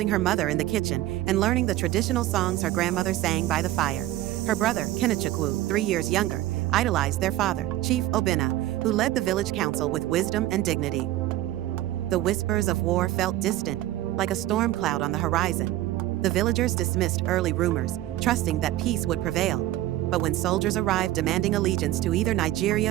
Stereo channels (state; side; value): quieter; left; 14.9 dB